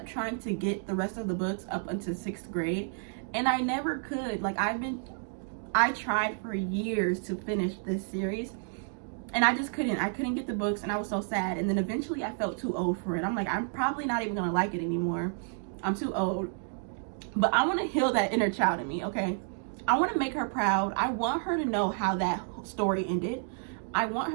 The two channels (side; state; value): left; silent; 57 dB below the other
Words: trying to get the rest of the books up until 6th grade. And I never could. Like, I tried for years to finish this series. And I just couldn't. I couldn't get the books, and I was so sad. And then eventually I felt too old for it. I'm like, I'm probably not even gonna like it anymore. I'm too old. But I want to heal that inner child in me, okay? I want to make her proud. I want her to know how that story ended. I want